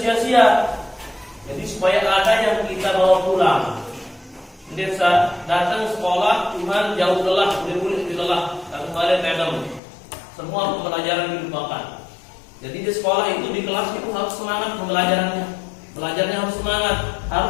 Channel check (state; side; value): drops out; right; at 9.8 s